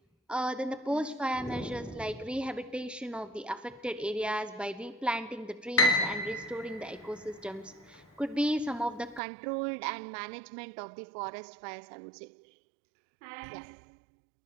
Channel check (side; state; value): left; drops out; at 9.2 s